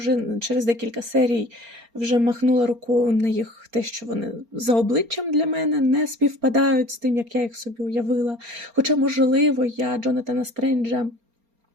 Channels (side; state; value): left; late; 4.3 ms